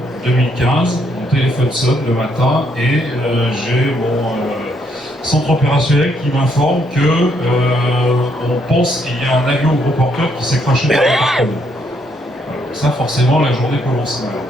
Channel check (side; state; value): both; normal; correlation 0.72